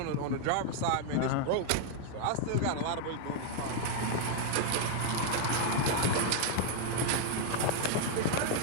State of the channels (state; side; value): different; both; correlation -0.01